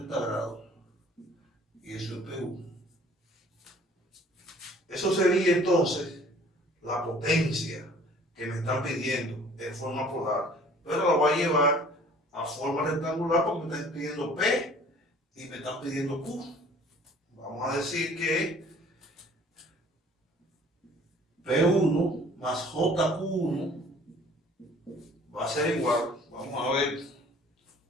grados. Y eso es PU. Eso sería entonces la potencia que me están pidiendo en forma polar, pero la voy a llevar a forma rectangular porque me están pidiendo P y me están pidiendo Q. Vamos a decir que P1 más JQ1 va a ser igual, vamos a ver,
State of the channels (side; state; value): both; normal; correlation 0.52